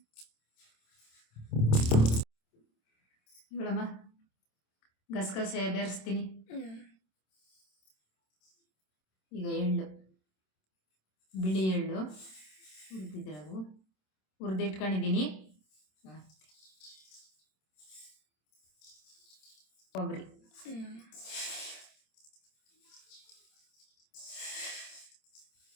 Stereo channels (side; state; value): right; late; 27 ms